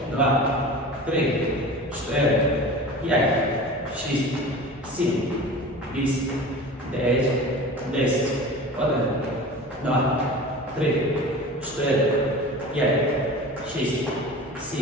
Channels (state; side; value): normal; both; correlation 0.36